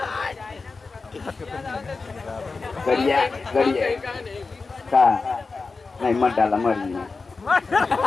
गरिया गरिया का नहीं मत डाला मरी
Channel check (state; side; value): quieter; right; 4.2 dB